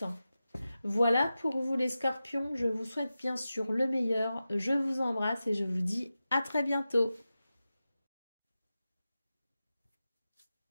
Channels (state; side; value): inverted; both; correlation -0.93